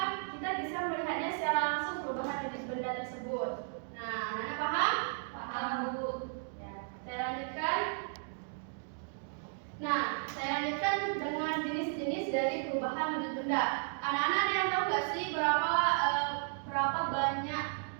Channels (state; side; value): silent; left; 55 dB below the other